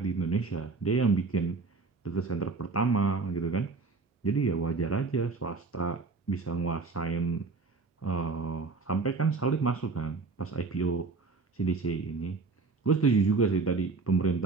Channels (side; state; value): left; quieter; 4.2 dB